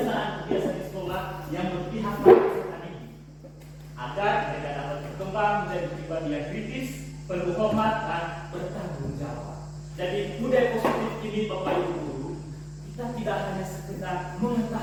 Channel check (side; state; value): both; identical; correlation 1.00